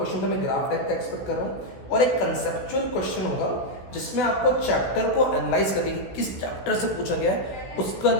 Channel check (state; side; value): late; right; 16 ms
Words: तो मैं ग्राफ टाइप का एक्सपेक्ट कर रहा हूं और एक कंसेप्चुअल क्वेश्चन होगा जिसमें आपको चैप्टर को एनालाइज करने की किस चैप्टर से पूछा गया है, उसके